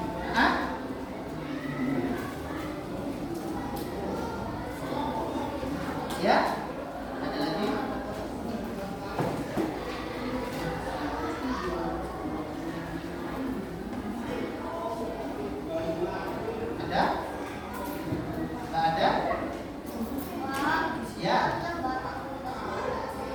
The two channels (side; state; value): both; identical; correlation 1.00